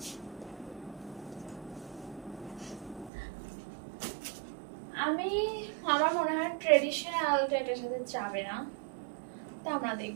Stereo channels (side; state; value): left; drops out; at 3.1 s